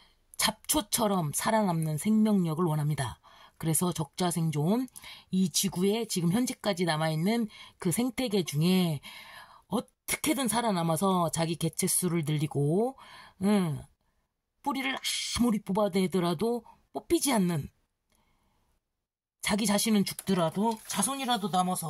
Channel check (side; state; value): both; identical; correlation 1.00